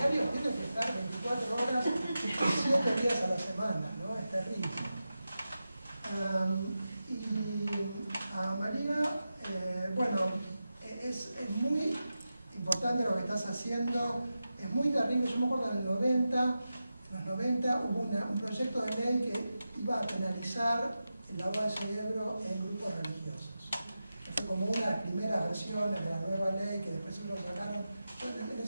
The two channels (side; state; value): both; inverted; correlation -0.92